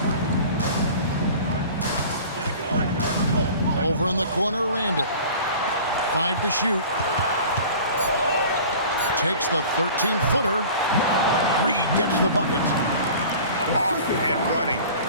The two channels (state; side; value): inverted; both; correlation -0.42